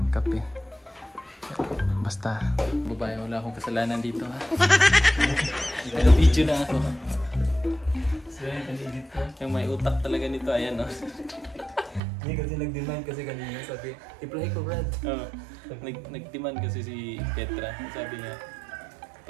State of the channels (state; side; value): drops out; left; at 12.0 s